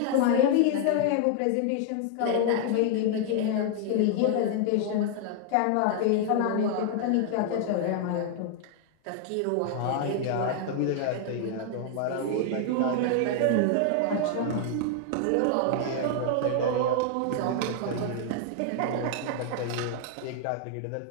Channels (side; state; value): both; different; correlation 0.00